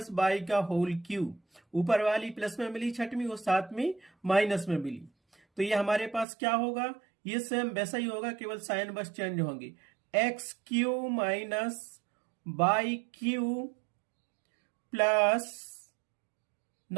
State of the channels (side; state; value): left; drops out; at 6.2 s